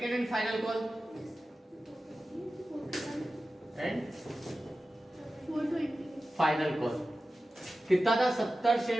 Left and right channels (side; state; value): both; normal; correlation 0.94